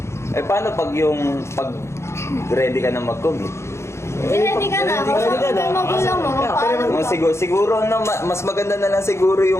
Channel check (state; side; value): late; right; 0.13 ms